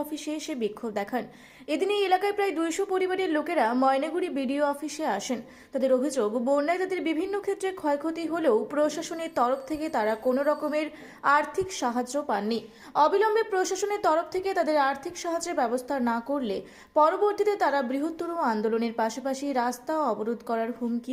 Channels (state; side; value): identical; both; correlation 1.00